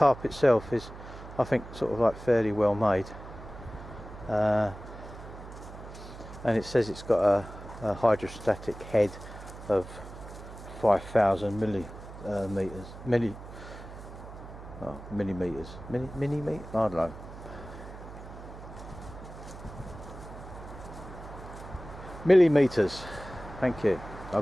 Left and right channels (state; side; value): noise; right; hum, 14 dB below the sound